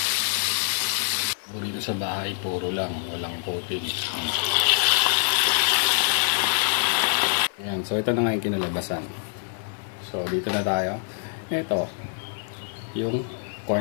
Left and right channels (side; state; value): right; silent; 56 dB below the other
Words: Dito sa bahay, puro lang. Walang coating. Ayan, so ito na nga yung kinalabasan. So dito na tayo. Ito, yung